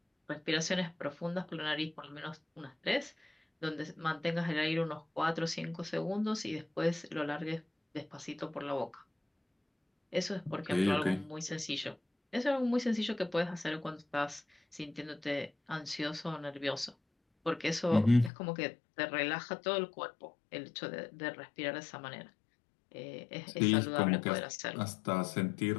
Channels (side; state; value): right; drops out; at 18.3 s